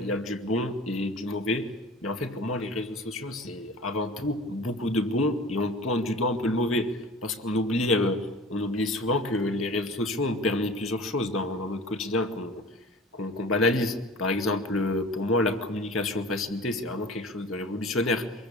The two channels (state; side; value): normal; both; correlation 0.41